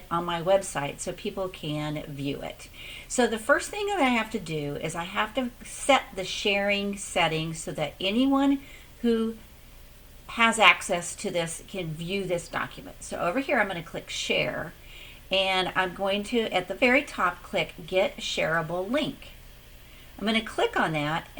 on my website so people can view it. So the first thing that I have to do is I have to set the sharing settings so that anyone who has access to this can view this document. So over here I'm going to click Share. And I'm going to, at the very top, click Get Shareable Link. I'm going to click on that,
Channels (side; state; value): both; identical; correlation 1.00